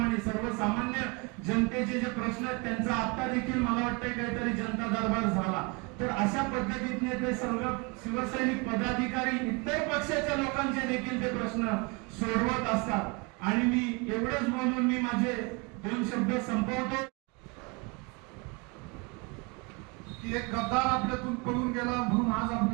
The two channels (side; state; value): left; quieter; 29.3 dB